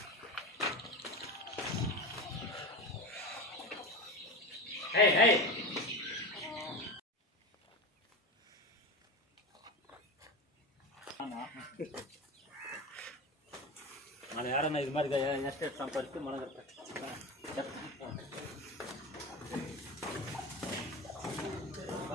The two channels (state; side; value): normal; both; correlation 0.25